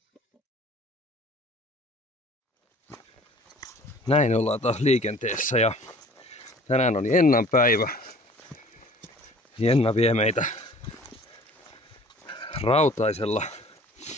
Näin ollaan taas liikenteessä ja tänään on Jennan päivä. Jenna vie meitä rautaisella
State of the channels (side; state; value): both; normal; correlation 0.50